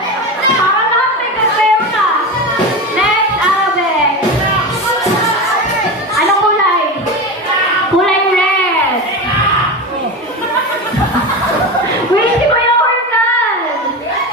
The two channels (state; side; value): normal; both; correlation 0.23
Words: Para lahat may kasero na. Next, Alvin. Anong kulay? Kulay red. Wait, si Kuya Organ!